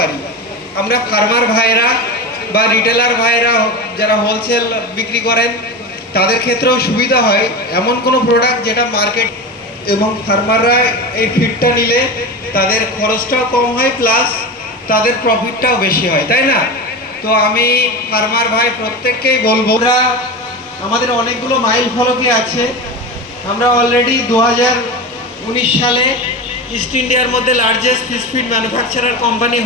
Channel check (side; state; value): both; normal; correlation 0.24